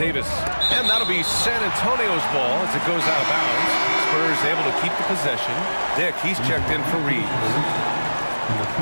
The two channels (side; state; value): both; inverted; correlation -1.00